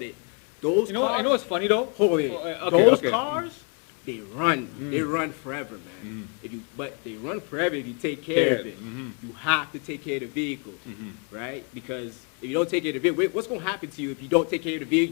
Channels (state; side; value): quieter; right; 36.6 dB